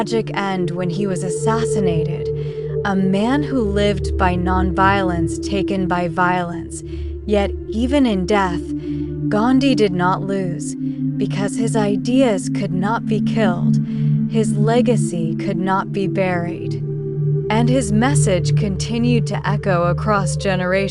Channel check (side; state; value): both; identical; correlation 1.00